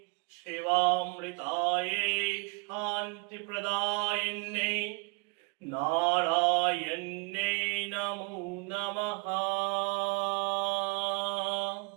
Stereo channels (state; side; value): quieter; left; 31.9 dB